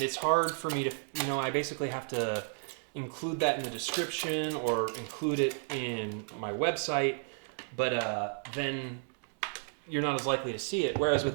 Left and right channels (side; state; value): left; silent; 56 dB below the other